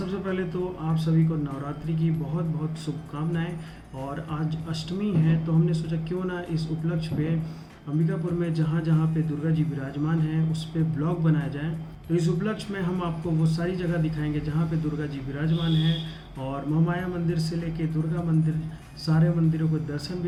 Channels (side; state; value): both; identical; correlation 1.00